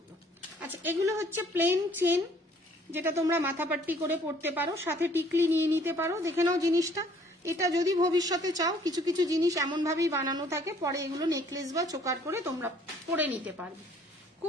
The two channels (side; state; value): both; normal; correlation 0.59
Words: আচ্ছা, এগুলো হচ্ছে প্লেন চেন, যেটা তোমরা মাথাপাট্টি করে পড়তে পারো, সাথে টিকলি নিয়ে নিতে পারো। দেখে নাও জিনিসটা, এটা যদি ভবিষ্যতে চাও, কিছু কিছু জিনিস এমন ভাবেই বানানো থাকে, পরে এগুলো নেকলেস বা চোকার করে তোমরা পরে নিতে পারবে।